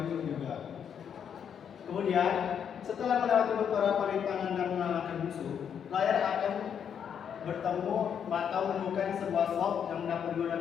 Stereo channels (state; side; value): quieter; right; 8.0 dB